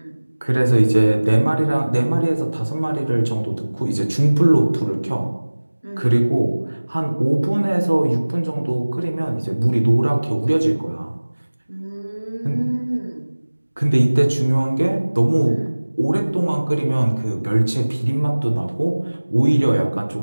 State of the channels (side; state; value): both; inverted; correlation -1.00